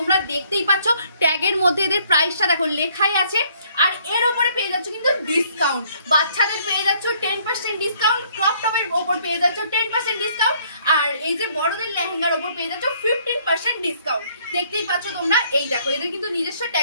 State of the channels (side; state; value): both; inverted; correlation -0.64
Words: দেখতেই পাচ্ছ ট্যাগের মধ্যে এদের প্রাইসটা দেখো লেখাই আছে। আর এর উপরে পেয়ে যাচ্ছ কিন্তু ডিসকাউন্ট। বাচ্চাদের পেয়ে যাচ্ছ 10% ডিসকাউন্ট, ক্রপ টপের উপর পেয়ে যাচ্ছ 10% ডিসকাউন্ট, আর এই যে বড়দের লেহেঙ্গার উপর পেয়ে যাচ্ছ 15% ডিসকাউন্ট। দেখতেই পাচ্ছ তোমরা। এই দেখো এদের কিন্তু নিজস্ব